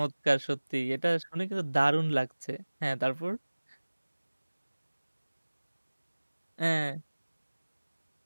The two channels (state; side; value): inverted; both; correlation -1.00